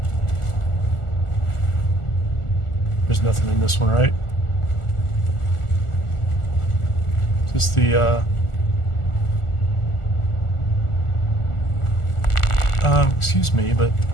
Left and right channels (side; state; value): right; late; 1.4 ms